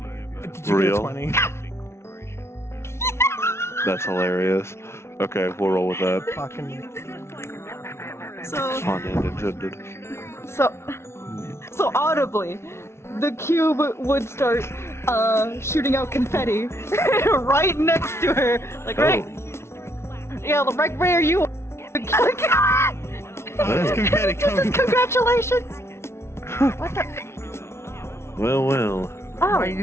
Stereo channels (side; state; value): right; late; 0.13 ms